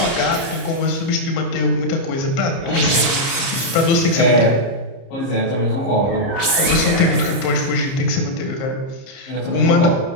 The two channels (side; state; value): right; late; 30 ms